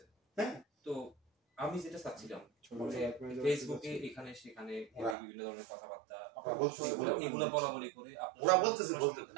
তো আমি যেটা চাচ্ছিলাম ফেসবুকে এখানে সেখানে বিভিন্ন ধরনের কথাবার্তা এগুলো বলা বলি করে ওরা বলতেছে,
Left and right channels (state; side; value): drops out; left; at 5.2 s